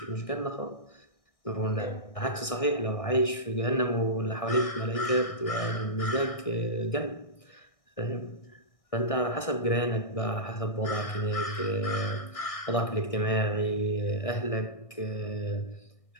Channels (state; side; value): late; right; 1.6 ms